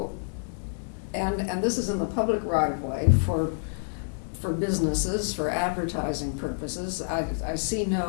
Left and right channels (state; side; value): silent; right; 60 dB below the other